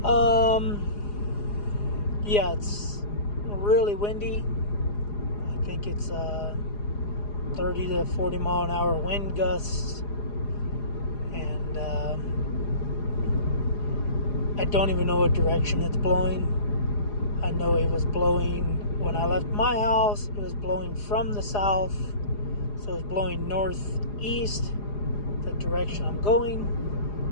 Yeah, it's really windy. I think it's 30 to 40 mile an hour wind gusts. And I don't even know what direction it's blowing. I know it was blowing when I left my house. It was blowing from the south. So it's blowing northeast, the direction I'm going,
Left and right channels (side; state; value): right; late; 4.9 ms